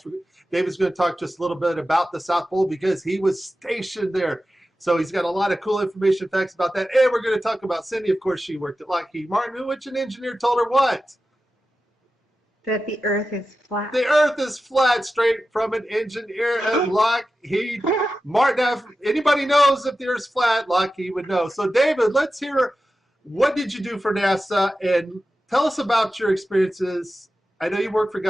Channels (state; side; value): normal; both; correlation 0.93